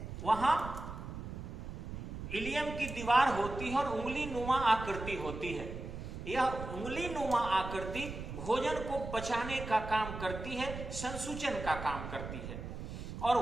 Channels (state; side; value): noise; right; rumble, 8 dB below the sound